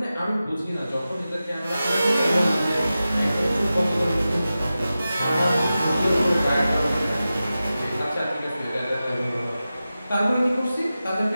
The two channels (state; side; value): inverted; both; correlation -0.94